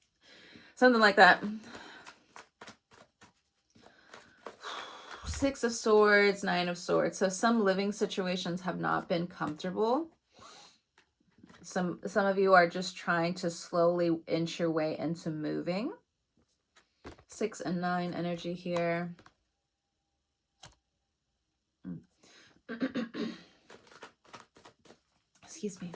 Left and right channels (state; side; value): identical; both; correlation 1.00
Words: Something like that. Six of Swords, Nine of Swords. So some living situations have not been comfortable. Some of you are just trying to slowly inch your way into moving. 6 and 9 energy here. Excuse me.